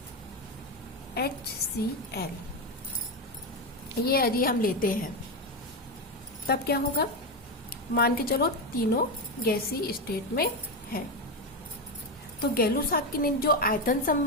HCl ये यदि हम लेते हैं तब क्या होगा। मान के चलो तीनों गैसीय स्टेट में है, तो गै-लुसाक ने जो आयतन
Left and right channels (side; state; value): both; normal; correlation 0.12